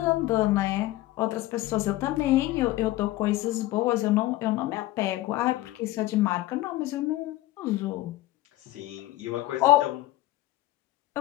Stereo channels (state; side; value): quieter; right; 16.7 dB